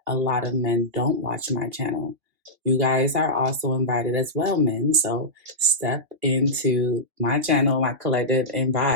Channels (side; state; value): left; late; 2.8 ms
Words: a lot of men don't watch my channel. You guys are also invited as well, men. So step into my channel, my collective, and